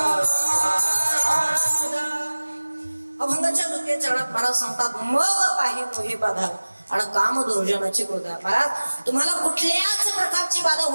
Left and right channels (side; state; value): both; inverted; correlation -1.00